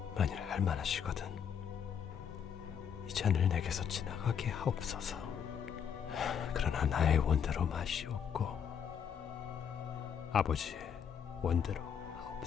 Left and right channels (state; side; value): quieter; right; 7.8 dB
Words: 만일 할만하시거든 이 잔을 내게서 지나가게 하옵소서. 그러나 나의 원대로 마시옵고 아버지의 원대로